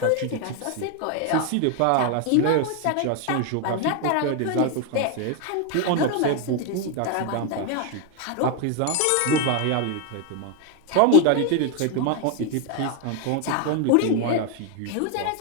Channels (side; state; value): both; different; correlation 0.01